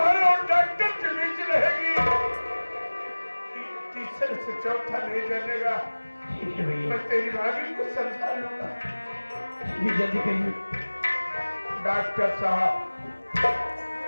और डॉक्टर के बीच रहेगी। तीसरे से चौथा नहीं जानेगा। ठीक है भैया, मैं तेरी भाभी को समझा लूंगा। ये जल्दी करिए। डॉक्टर साहब,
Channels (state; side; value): inverted; both; correlation -1.00